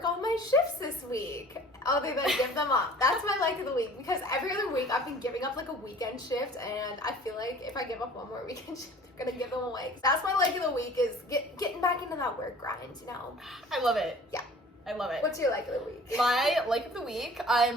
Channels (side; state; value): both; normal; correlation 0.47